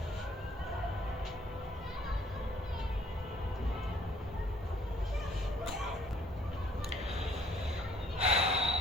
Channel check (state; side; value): normal; both; correlation 0.61